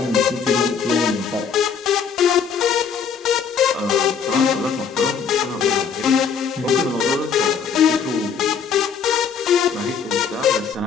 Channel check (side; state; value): right; quieter; 6.5 dB